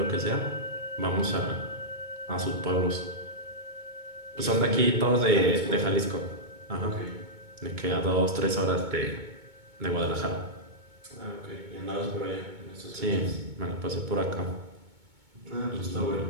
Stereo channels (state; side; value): late; left; 2.2 ms